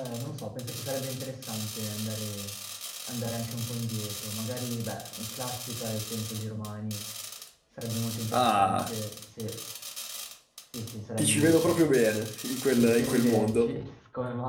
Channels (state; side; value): identical; both; correlation 1.00